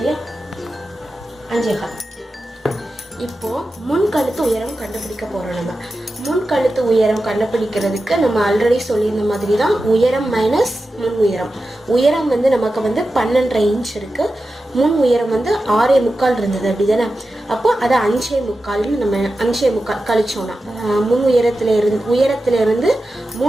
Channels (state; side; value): normal; both; correlation 0.92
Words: 5.25. இப்போ முன் கழுத்து உயரம் கண்டுபிடிக்க போறோம். நம்ம முன் கழுத்து உயரம் கண்டுபிடிக்கிறதுக்கு நம்ம ஆல்ரெடி சொல்லியிருந்த மாதிரி தான் உயரம் மைனஸ் முன் உயரம். உயரம் வந்து நமக்கு வந்து 12.5 இன்ச் இருக்கு. முன் உயரம் வந்து 6.25 இருந்தது, அப்படிதானே? அப்போ அதை 5.25 நம்ம 5.25 கழிச்சோம்னா முன் உயரத்துல இருந்து